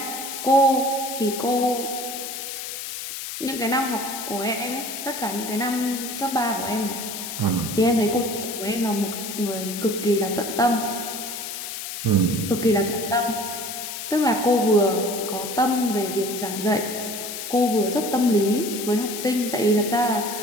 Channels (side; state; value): left; noise; hiss, 7 dB below the sound